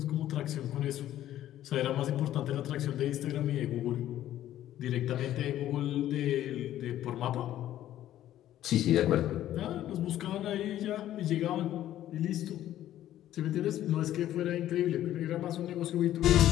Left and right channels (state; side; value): quieter; right; 12.7 dB